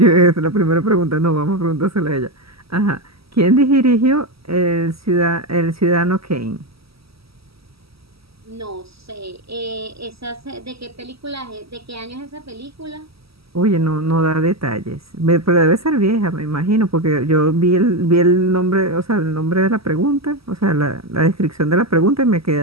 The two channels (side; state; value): left; late; 0.76 ms